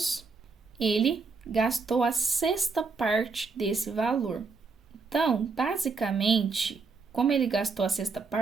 ele gastou a sexta parte desse valor. Então, basicamente, como ele gastou a sexta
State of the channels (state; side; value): quieter; left; 4.5 dB